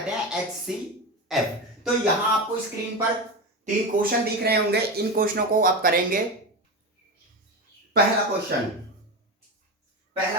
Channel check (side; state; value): both; normal; correlation 0.20